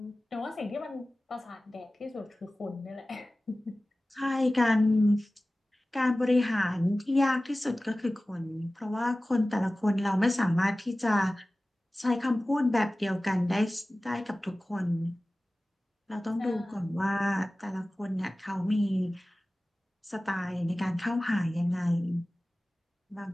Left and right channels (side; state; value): both; normal; correlation 0.97